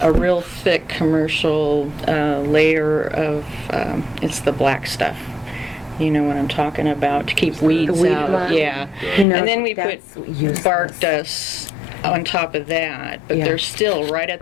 a real thick commercial layer of, it's the black stuff. You know what I'm talking about, to keep weeds weed out. line. Yeah. You know, And then we put that's useless. bark dust on top of that, but Yeah. there's still right at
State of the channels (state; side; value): drops out; right; at 9.2 s